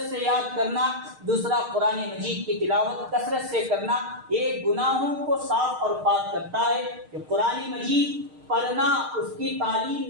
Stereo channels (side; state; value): left; late; 6.5 ms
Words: سے یاد کرنا، دوسرا قرآن مجید کی تلاوت کثرت سے کرنا۔ یہ گناہوں کو صاف اور پاک کرتا ہے کہ قرآن مجید پڑھنا، اس کی